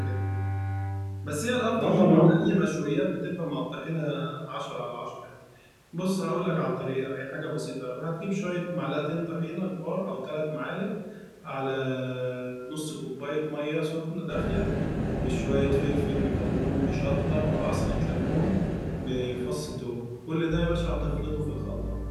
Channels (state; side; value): identical; both; correlation 1.00